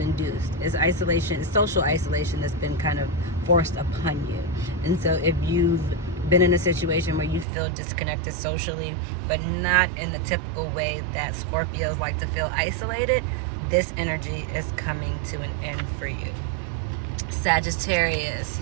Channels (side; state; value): left; drops out; at 7.5 s